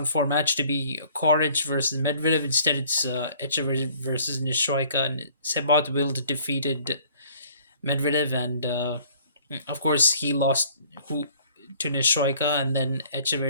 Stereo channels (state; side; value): inverted; both; correlation -0.56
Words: four match to be Koric versus Medvedev. Instead, it's Echeverry versus Nishoika, and Sebot defeated Medvedev, and of course he lost who to Nishoika, and then